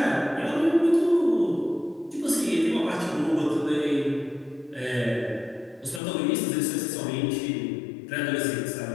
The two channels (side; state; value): right; drops out; at 6.0 s